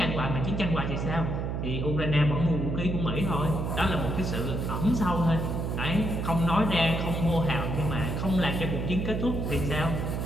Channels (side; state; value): right; noise; hum, 2 dB below the sound